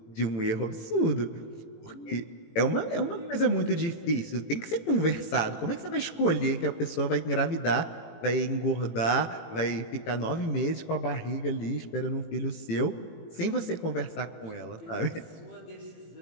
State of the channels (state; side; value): late; right; 18 ms